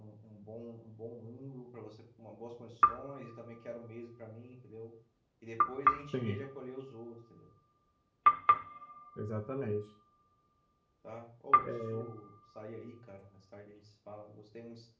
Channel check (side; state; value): both; identical; correlation 1.00